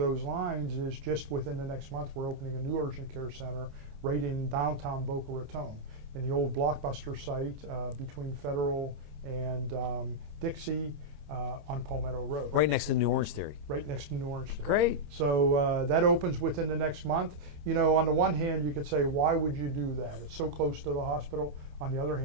lines is just within the next month, we're opening a new urgent care center right in downtown Boca Raton, in the old Blockbuster site between Fedele and Dixie on Palmetto Road. Right next to New Orange Theory. Right next to New Orange Theory. Great. So that opens within the next month. You know, on the one hand, you could say, why would you do that? It's so close to the hospital. On the other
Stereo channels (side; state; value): left; late; 28 ms